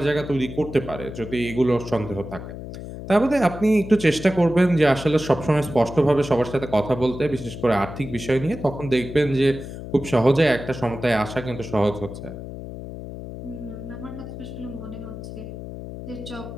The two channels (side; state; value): left; noise; hum, 10 dB below the sound